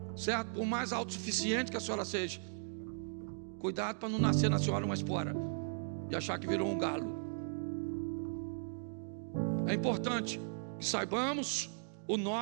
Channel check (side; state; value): left; silent; digital silence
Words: certo? Por mais autossuficiente que a senhora seja, cuidado para não nascer na senhora uma espora e achar que virou um galo. É importante que saibamos o